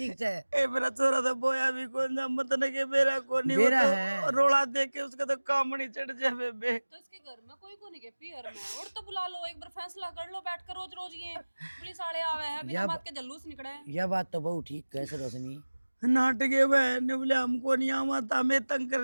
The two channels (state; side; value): inverted; both; correlation -1.00